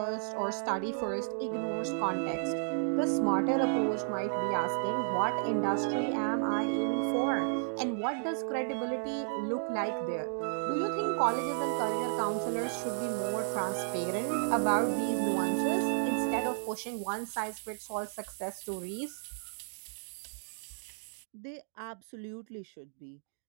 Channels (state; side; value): silent; left; digital silence